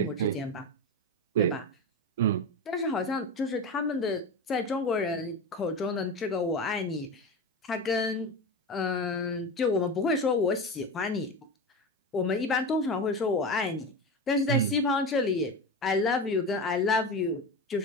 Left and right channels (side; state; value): both; normal; correlation 0.23